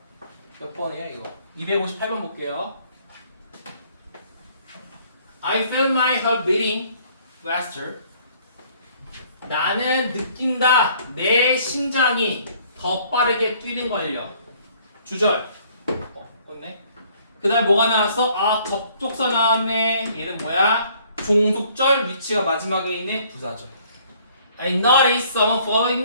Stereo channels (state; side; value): inverted; both; correlation -0.60